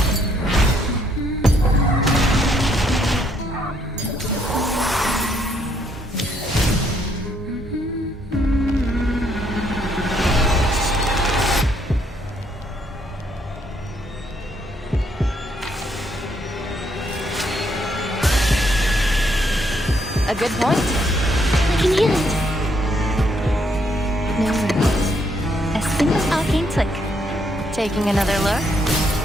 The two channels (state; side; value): normal; both; correlation 0.72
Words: A good point. I can hear it. No worries. A simple arcane trick. Taking another look.